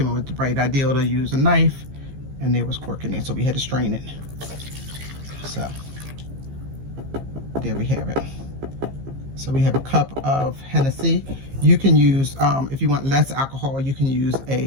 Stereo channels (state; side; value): late; left; 15 ms